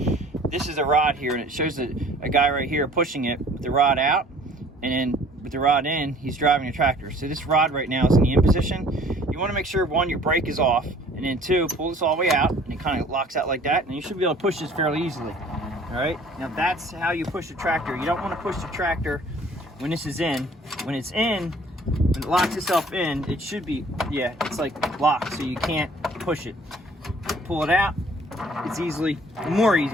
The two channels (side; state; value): both; normal; correlation 0.53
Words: this is a rod here, and it shows a guy right here pushing it with the rod out, and then with the rod in, he's driving a tractor. So this rod right now is in the in position. you want to make sure, one, your brake is off, and then two, pull this all the way out, and it kind of locks out like that, and you should be able to push this fairly easily. All right, now that's how you push the tractor. You don't want to push the tractor when this is in. When it's in, when it locks itself in, it should be, yeah, it's like locked, so you can't push it. Pull it out, it's more